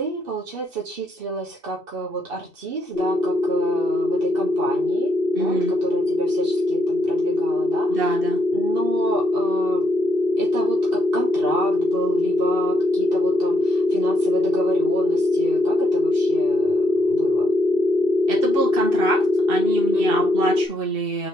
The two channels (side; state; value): left; late; 2.7 ms